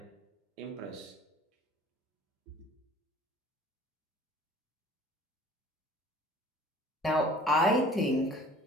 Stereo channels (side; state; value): both; normal; correlation 0.49